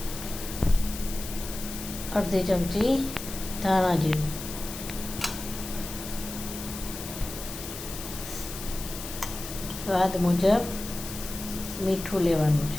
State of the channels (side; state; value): left; noise; hiss, 9 dB below the sound